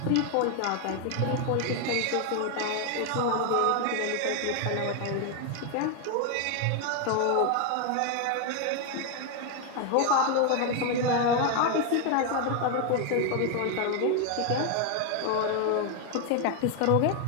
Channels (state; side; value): different; both; correlation 0.01